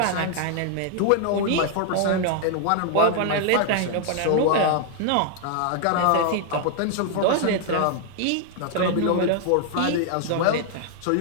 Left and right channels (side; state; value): both; different; correlation 0.00